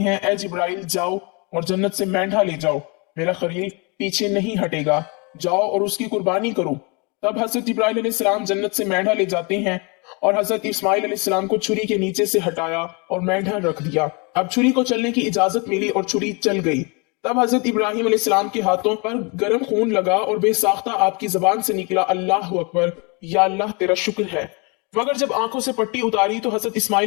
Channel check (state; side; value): quieter; right; 31.0 dB